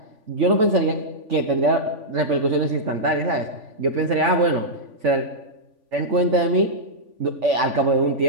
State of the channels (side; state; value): left; late; 3.5 ms